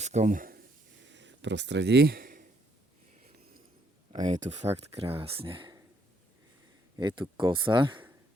prostredí a je tu fakt krásne. Je tu kosa,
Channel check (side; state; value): both; normal; correlation 0.70